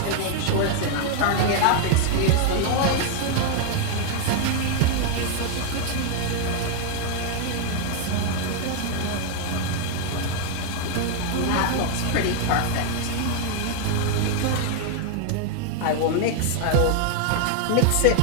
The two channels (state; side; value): different; both; correlation 0.00